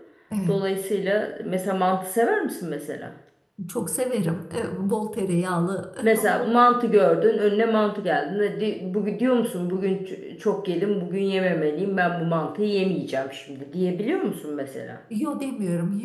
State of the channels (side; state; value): both; identical; correlation 1.00